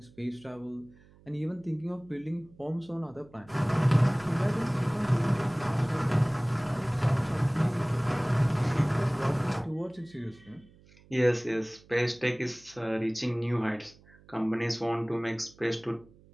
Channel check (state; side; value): noise; right; hum, 26 dB below the sound